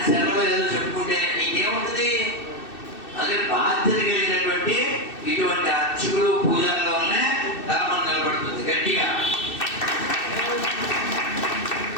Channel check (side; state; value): right; late; 2.6 ms